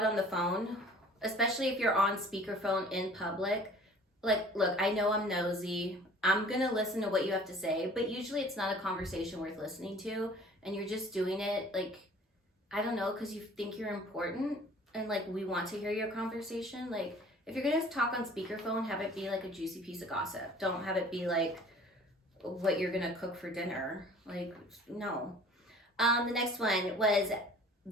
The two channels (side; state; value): both; normal; correlation 0.49